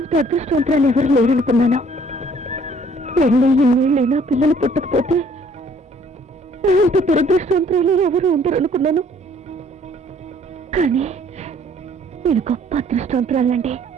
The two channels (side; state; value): both; normal; correlation 0.59